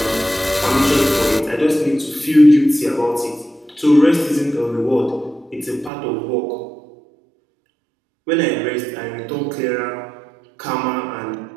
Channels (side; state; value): left; drops out; at 5.9 s